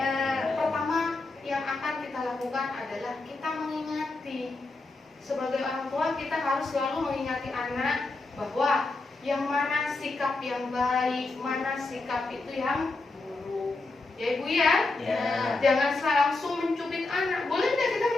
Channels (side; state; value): right; quieter; 3.3 dB